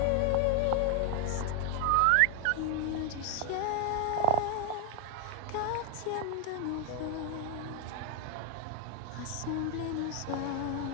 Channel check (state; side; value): different; both; correlation 0.01